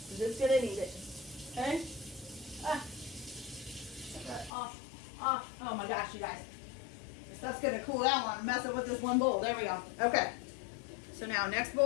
I'm just gonna need it. Okay? Ah. Off. Off. Oh my gosh, you guys. This stuff's gonna cool down while I'm messing with this one bowl. There we go. Okay. So now next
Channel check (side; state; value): right; drops out; at 4.5 s